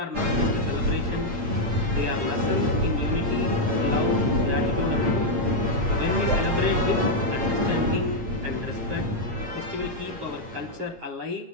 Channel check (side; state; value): left; late; 8.6 ms